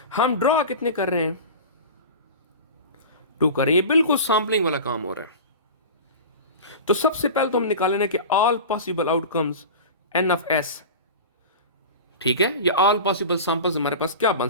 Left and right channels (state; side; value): inverted; both; correlation -0.32